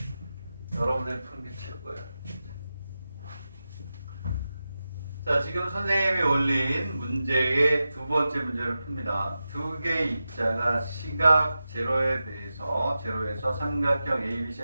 여러분들이 푸는 게 최고예요. 자, 지금 선생님이 올린 문제의 두 번째 문제를 풉니다. 두 개의 입자가 시각 제로에서 삼각형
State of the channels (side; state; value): both; inverted; correlation -0.92